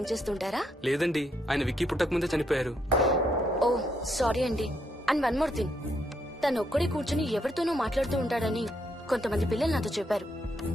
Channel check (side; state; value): both; normal; correlation 0.76